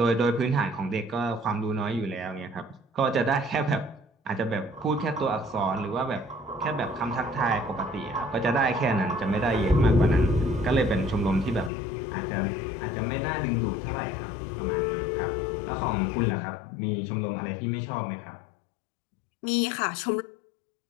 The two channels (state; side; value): drops out; right; at 11.7 s